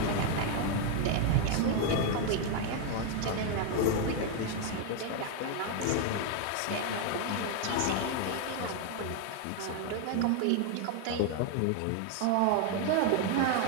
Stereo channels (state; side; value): different; both; correlation 0.01